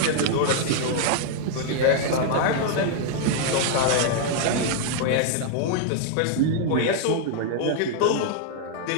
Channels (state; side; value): different; both; correlation 0.00